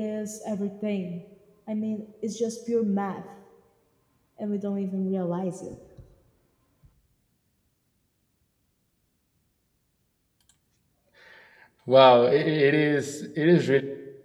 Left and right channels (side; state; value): both; identical; correlation 1.00